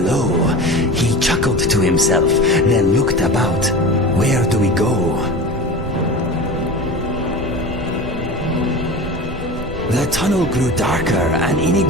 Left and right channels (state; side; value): noise; right; rumble, 12 dB below the sound